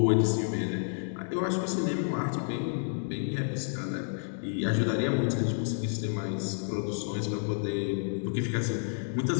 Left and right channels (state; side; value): silent; right; digital silence